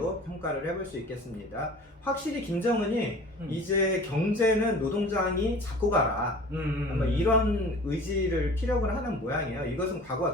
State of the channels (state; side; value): normal; both; correlation 0.43